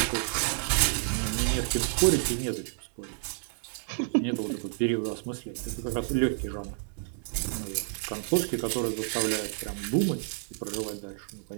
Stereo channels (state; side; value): silent; left; 58 dB below the other